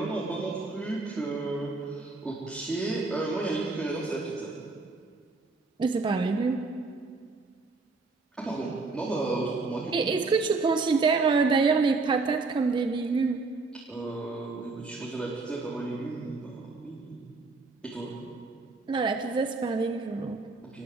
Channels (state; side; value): quieter; left; 3.9 dB